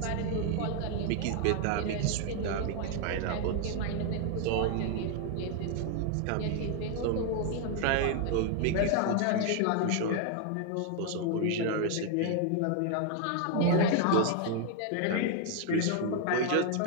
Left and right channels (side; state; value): both; different; correlation 0.00